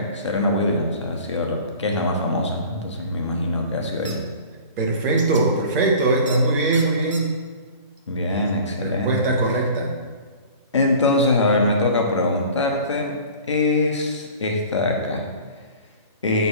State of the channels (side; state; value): both; inverted; correlation -0.43